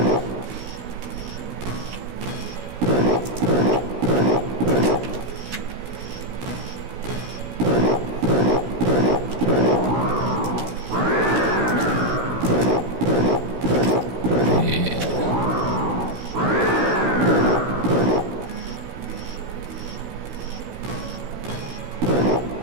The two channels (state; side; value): late; left; 16 ms